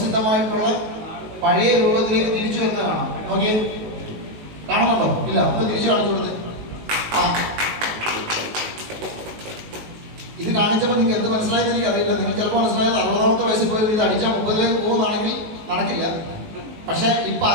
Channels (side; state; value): left; late; 19 ms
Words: പഴയ രൂപത്തിലേക്ക് തിരിച്ചു വരുന്നത് കാണാം. നോക്കിയേ, കാണുന്നുണ്ടോ? ഇല്ല, ഒന്ന് തിരിച്ചു കാണിച്ചു കൊടുത്ത്. ആ, ഇത് കാണിച്ചപ്പോൾ നിങ്ങൾക്ക് എന്ത് മനസ്സിലായെന്ന് എനിക്ക് അറിയില്ല. നിങ്ങൾ ചിലപ്പോൾ മനസ്സിലായത് 60ാമത്തെ വയസ്സിൽ പോയി ഇത് അടിച്ചാൽ 30ലേക്ക് പോകുന്നതാണെങ്കിൽ നടക്കില്ല. പക്ഷെ ഇപ്പൊ